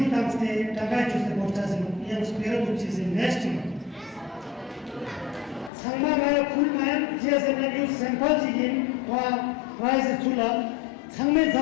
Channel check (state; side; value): drops out; right; at 5.7 s